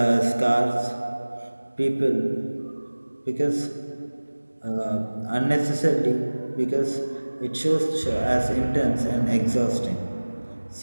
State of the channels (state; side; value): inverted; both; correlation -1.00